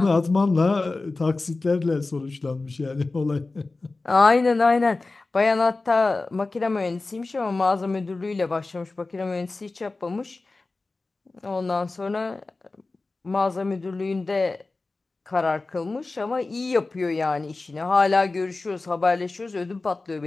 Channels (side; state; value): right; quieter; 3.4 dB